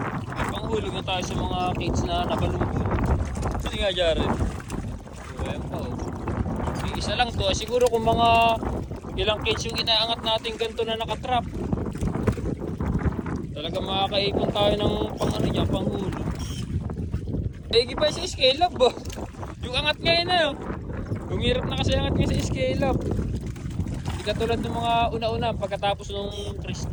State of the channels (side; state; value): both; identical; correlation 1.00